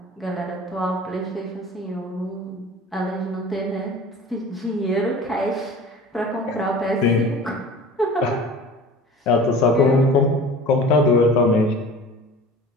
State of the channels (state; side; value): normal; both; correlation 0.41